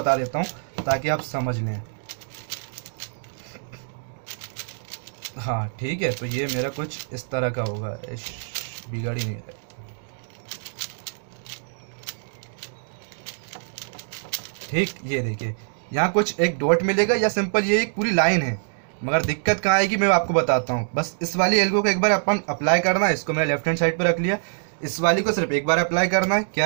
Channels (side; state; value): left; silent; digital silence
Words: देता हूँ ताकि आप समझ लें। हाँ ठीक है, तो ये मेरा कुछ इस तरह का होगा, बिगाड़ ही नहीं रहा। ठीक, ये देखिए यहाँ कुछ एक डॉट मिलेगा, या सिंपल ये एक पूरी लाइन है। मगर दिक्कत कहाँ आएगी मैं आपको बताता हूँ। बस इस वाली एल्गो को एक बार अपन अप्लाई करना है, इसको मैंने लेफ्ट हैंड साइड पे रख लिया। इस वाली को सिर्फ एक बार अप्लाई करना है।